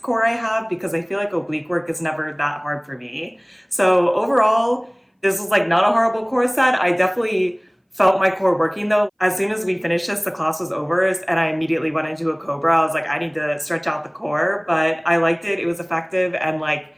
core I have because I feel like oblique work is never that hard for me. So overall, this was like not a horrible core set. I definitely felt my core working though. As soon as we finished this, the class was over and I immediately went into a cobra. I was like, I need to stretch out the core, but I liked it. It was effective. And like,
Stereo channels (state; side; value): identical; both; correlation 1.00